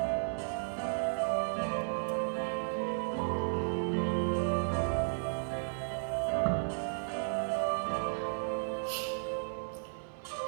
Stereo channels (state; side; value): silent; left; digital silence